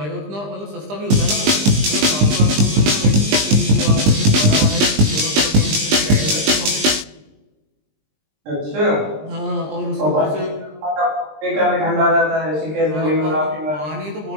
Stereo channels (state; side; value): late; left; 20 ms